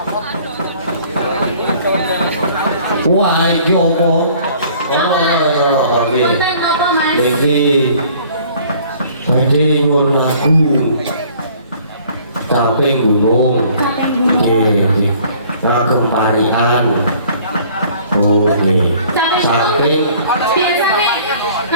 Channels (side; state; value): both; inverted; correlation -0.55